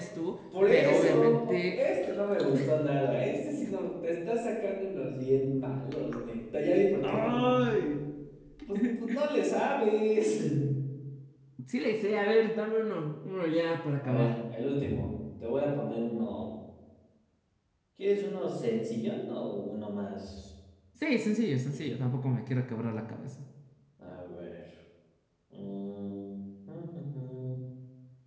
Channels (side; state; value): both; identical; correlation 1.00